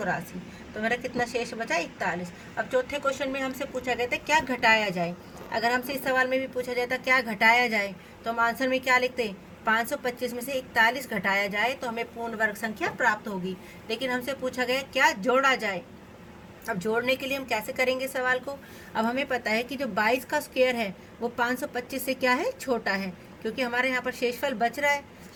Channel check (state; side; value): identical; both; correlation 1.00